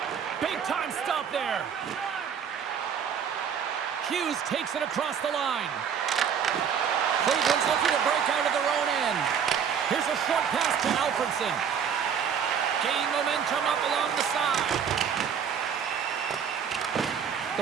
Big time stop there. Hughes takes it across the line. Cleveland's looking to break out of their own end. Here's a short pass to Alfredson. Gain momentum up along the side.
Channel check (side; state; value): left; quieter; 7.6 dB